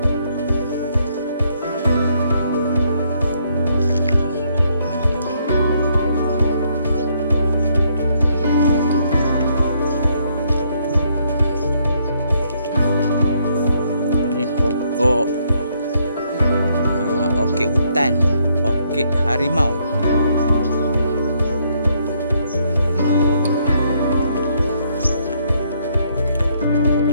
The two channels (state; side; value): inverted; both; correlation -0.71